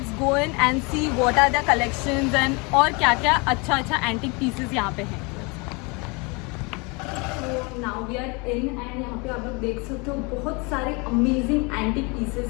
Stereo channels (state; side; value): quieter; right; 29.5 dB